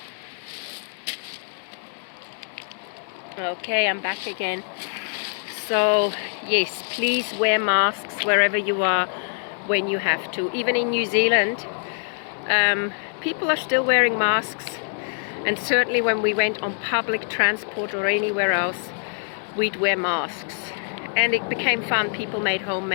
Okay, I'm back again. So yes, please wear masks wherever you are when you have to. Even in New Zealand, people are still wearing masks, and certainly when we went on public transport or anywhere else, we'd wear masks. And it became fun. People made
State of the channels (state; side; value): silent; right; 62 dB below the other